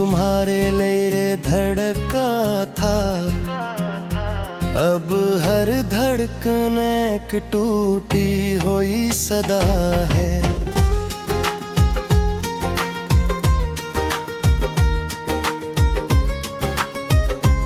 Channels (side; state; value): both; identical; correlation 1.00